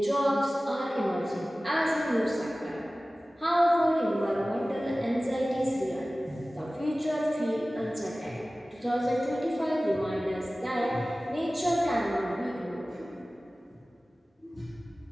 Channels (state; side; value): normal; both; correlation 0.97